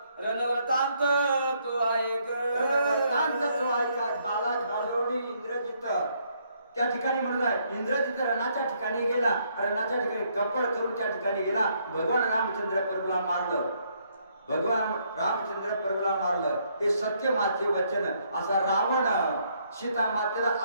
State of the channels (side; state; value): both; inverted; correlation -0.71